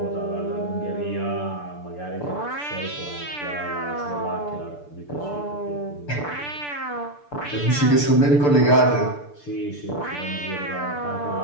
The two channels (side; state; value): right; late; 6.8 ms